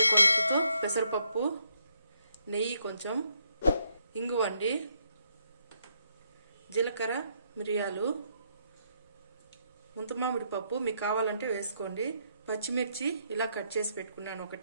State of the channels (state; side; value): inverted; both; correlation -0.74